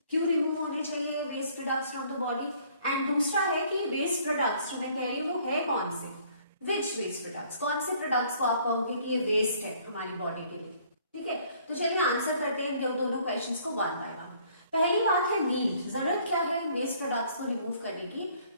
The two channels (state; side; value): inverted; both; correlation -0.60